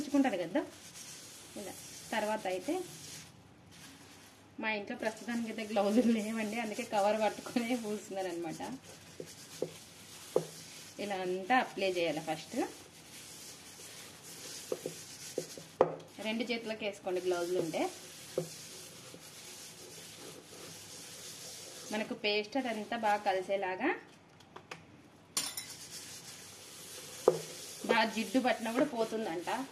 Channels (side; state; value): both; identical; correlation 1.00